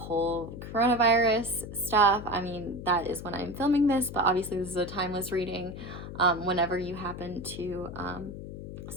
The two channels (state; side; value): noise; left; hum, 10 dB below the sound